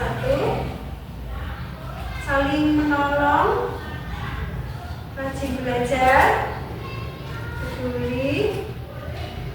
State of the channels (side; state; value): both; identical; correlation 1.00